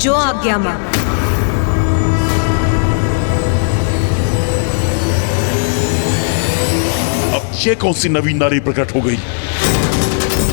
आज्ञा मां। अब ये कौन सी नवीन नारी प्रकट हो गई?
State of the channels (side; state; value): right; silent; digital silence